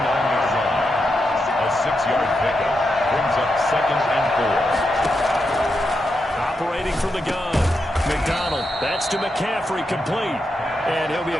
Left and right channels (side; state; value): both; normal; correlation 0.85